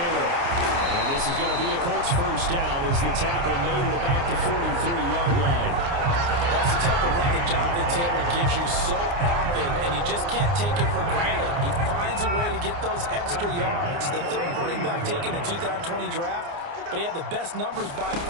And this is going to be a Colts first down as the tackle made it about the 43-yard line. That's the type of run that Jonathan Taylor gives you so often, and you just can't take it for granted. He finds a way to get those extra yards. The third running back taken in the 2020 draft, but he had the best numbers by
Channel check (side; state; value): left; late; 29 ms